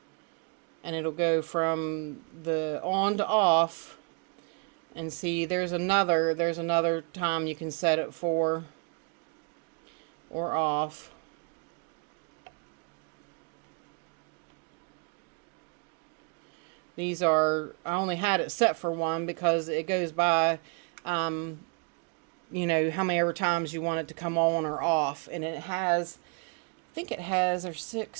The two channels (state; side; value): quieter; left; 34.7 dB